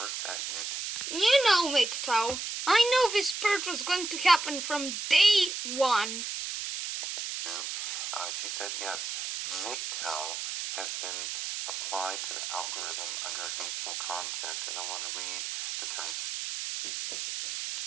at YouTube, You know, MGTOW, I know this purge was going to happen from day one. she said yes, MGTOW has been applied to the algorithm under hateful content, and I want to read the terms.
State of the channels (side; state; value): right; noise; hiss, 4 dB below the sound